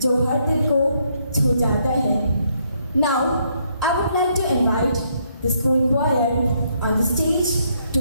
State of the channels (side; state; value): both; inverted; correlation -0.72